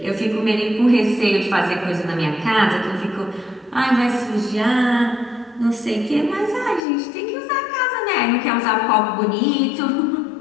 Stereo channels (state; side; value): drops out; right; at 6.8 s